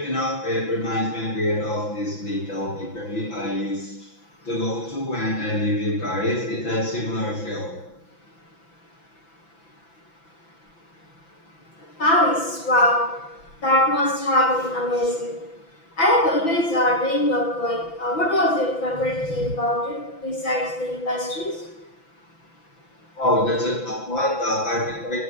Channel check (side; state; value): right; late; 6.0 ms